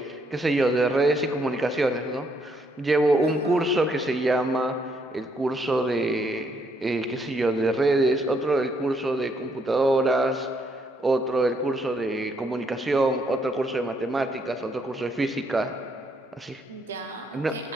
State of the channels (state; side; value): normal; both; correlation 0.72